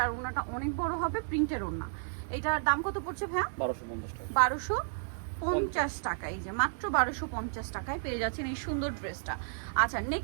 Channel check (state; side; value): silent; left; digital silence